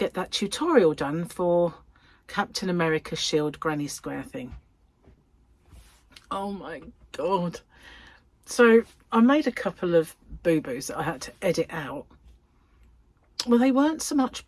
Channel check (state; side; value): identical; both; correlation 1.00